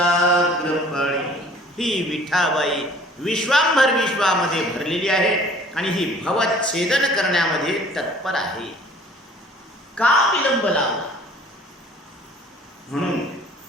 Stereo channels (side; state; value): both; normal; correlation 0.52